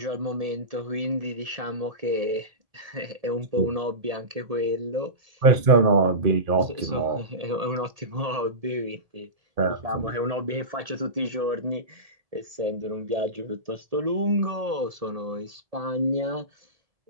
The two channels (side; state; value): left; late; 1.7 ms